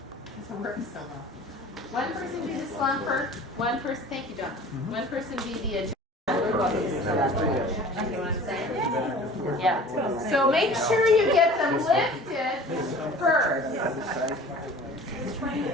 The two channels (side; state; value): both; normal; correlation 0.44